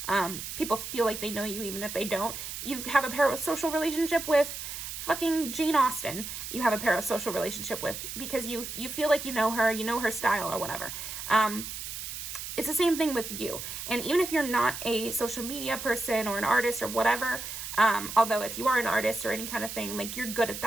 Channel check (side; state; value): right; noise; hiss, 7 dB below the sound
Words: people feel like they know you even if they don't. You have a parasocial relationship with fucking Jane Austen. You have a parasocial relationship with, because you feel like you know her style or whatever. It's the same thing with you. And even if you're not a social media person or an artist or whatever, although if you are an artist or any kind of thing, like, you're good at